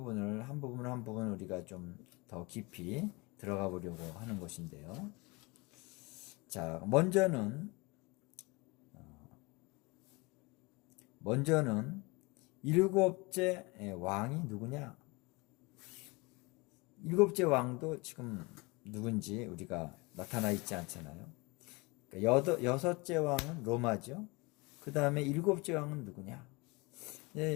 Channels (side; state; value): right; quieter; 26.0 dB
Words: 한 부분 우리가 좀 더 깊이 들어가 보려고 하는 것인데요. 자, 먼저는 7째 왕이 누구냐? 7째 왕도 지금 누군지 우리가 나타나 있지 않잖아요. 그러니까 6째 왕은 로마죠. 그 다음에 7째 왕은 누구냐?